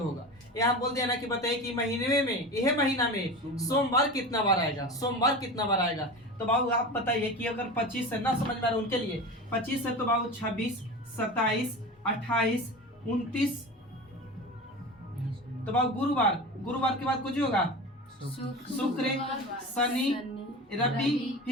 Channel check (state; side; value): normal; both; correlation 0.30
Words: होगा, यहाँ बोल दिया ना कि बताइए कि महीने में, यह महीना में सोमवार कितना बार आएगा, सोमवार कितना बार आएगा। तो बाबू आप बताइए कि अगर 25 से ना समझ में आ रहा उनके लिए, 25 है तो बाबू 26, 27, 28, 29, तो बाबू गुरुवार, गुरुवार के बाद कुछ होगा, शुक्र, शनि, रवि,